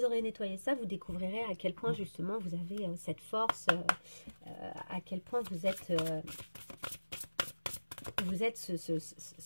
aurez nettoyé ça, vous découvrirez à quel point justement vous avez cette force, à quel point vous êtes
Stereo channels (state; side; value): inverted; both; correlation -1.00